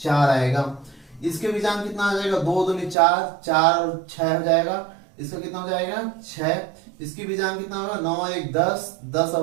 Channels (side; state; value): left; drops out; at 3.0 s